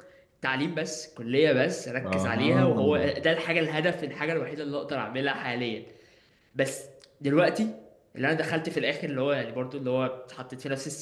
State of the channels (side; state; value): both; identical; correlation 1.00